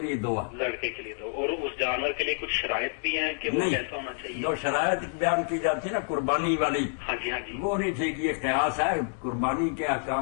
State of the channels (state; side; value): silent; right; 59 dB below the other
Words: لیے دو ہے۔ لڑکے کے لیے دو، اور اس جانور کے لیے کچھ شرائط بھی ہیں کہ وہ کیسا ہونا چاہیے؟ جو شرائط بیان کی جاتی ہے نا قربانی والی، ہاں جی ہاں جی، وہ نہیں ٹھیک، یہ قیاس ہے۔ قربانی کے